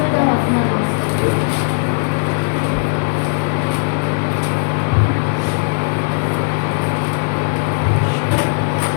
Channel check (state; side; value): silent; right; digital silence